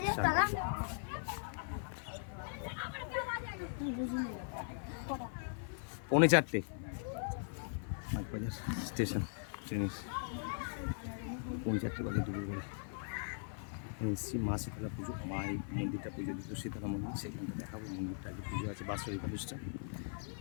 4:45 বাগবাজার স্টেশন ট্রেনের 4:45 বাজে দুপুরবেলা। এখানে এসেছি মা শীতলা পুজো, মা এই মন্দিরটা পুজো দিত, শীতলা মন্দির, সেখানটা দেখাবো। মন্দিরটা আগে পুজো আছে, বাৎসরিক অনুষ্ঠান।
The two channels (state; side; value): silent; right; 51 dB below the other